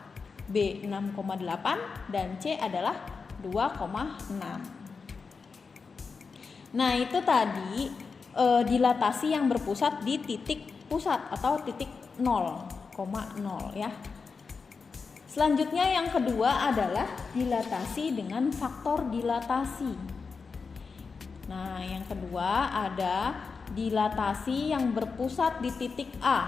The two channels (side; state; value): right; quieter; 4.9 dB